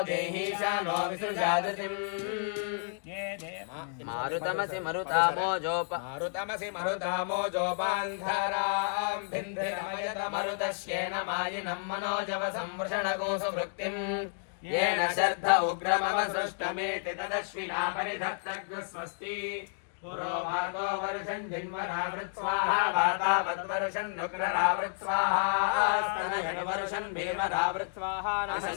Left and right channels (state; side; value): silent; right; digital silence